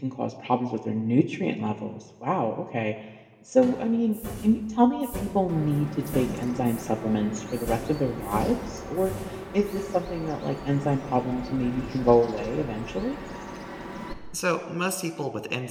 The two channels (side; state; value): both; identical; correlation 1.00